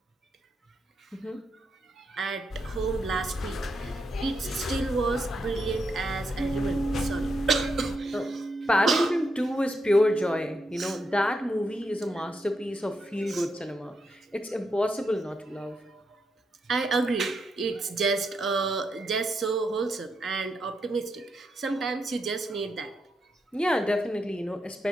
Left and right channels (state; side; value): normal; both; correlation 0.82